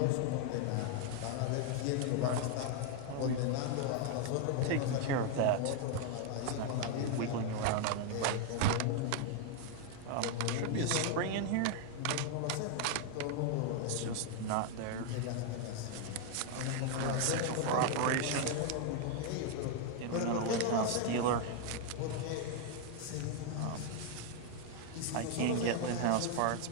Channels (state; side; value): different; both; correlation 0.00